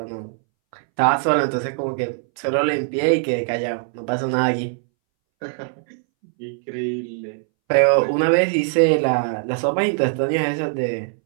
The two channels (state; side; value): silent; left; 63 dB below the other